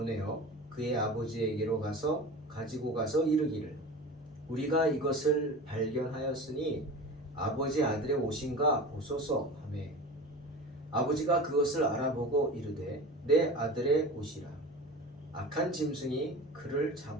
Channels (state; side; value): normal; both; correlation 0.33